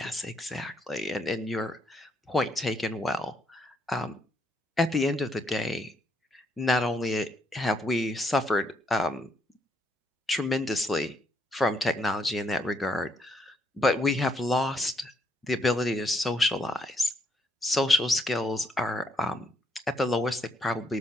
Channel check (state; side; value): normal; both; correlation 0.73